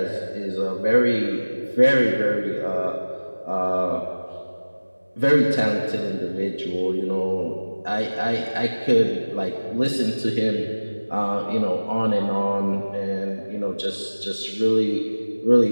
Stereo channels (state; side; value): inverted; both; correlation -1.00